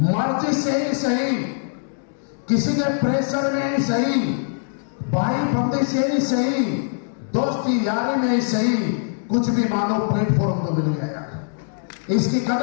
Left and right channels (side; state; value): right; silent; digital silence